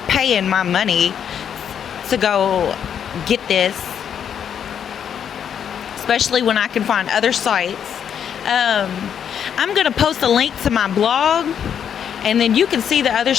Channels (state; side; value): quieter; right; 8.4 dB